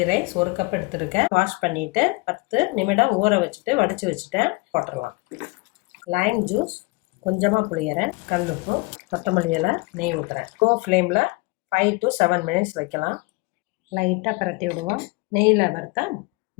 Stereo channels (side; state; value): right; quieter; 26.5 dB